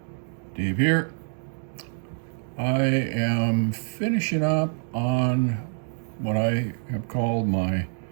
Dave here. I am finishing up on what I have called my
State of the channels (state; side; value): silent; left; 61 dB below the other